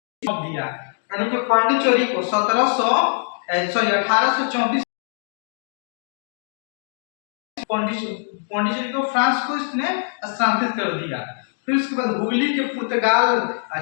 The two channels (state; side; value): silent; right; digital silence